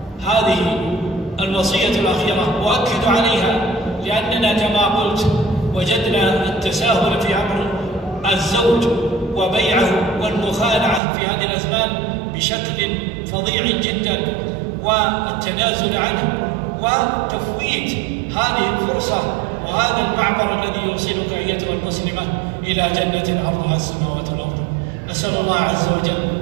الوصية الأخيرة أؤكد عليها، لأننا كما قلت وجدنا التساهل في أمر الزوج وبيعه والمخادعة في هذه الأزمان بشكل فظيع جدا، والتنازل عنه وتفويت هذه الفرصة وهذا المعبر الذي يوصلك أيتها المسلمة إلى جنة عرضها السماوات والأرض. نسأل الله عز وجل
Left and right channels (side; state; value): left; drops out; at 11.0 s